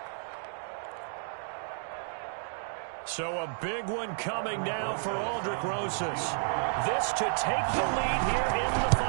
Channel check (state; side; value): silent; left; 57 dB below the other